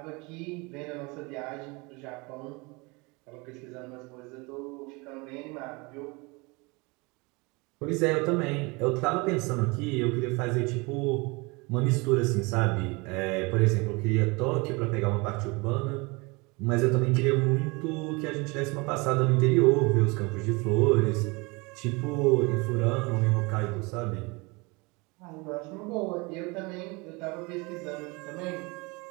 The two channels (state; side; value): quieter; left; 26.9 dB